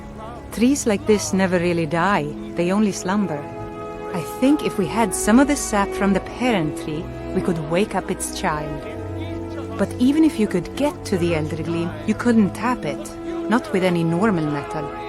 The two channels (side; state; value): both; identical; correlation 1.00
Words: Trees like this never really die, they only slumber. I think if we had some of the sap from the parent tree, we could wake up its child. But even if you could get to the Eldergleam, you couldn't tap it, not with any normal metal.